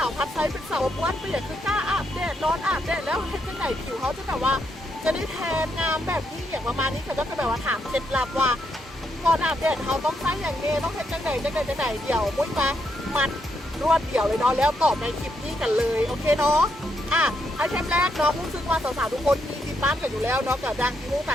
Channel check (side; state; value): both; normal; correlation 0.78